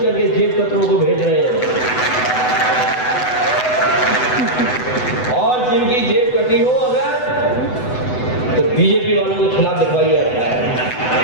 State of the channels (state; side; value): late; right; 8.0 ms